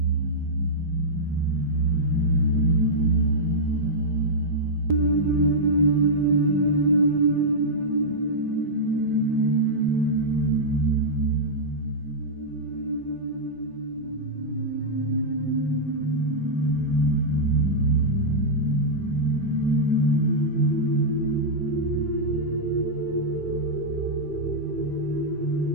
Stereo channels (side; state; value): left; late; 5.0 ms